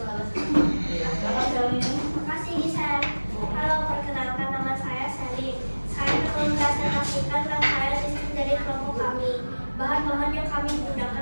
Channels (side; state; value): both; inverted; correlation -1.00